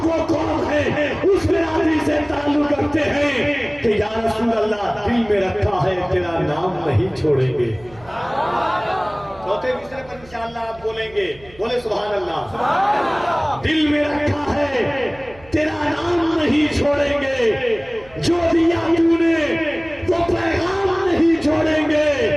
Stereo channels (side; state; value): right; noise; hum, 24 dB below the sound